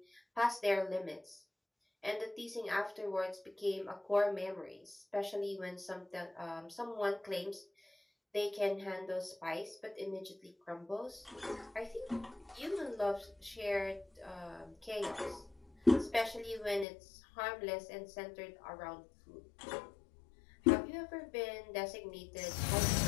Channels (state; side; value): drops out; right; at 16.9 s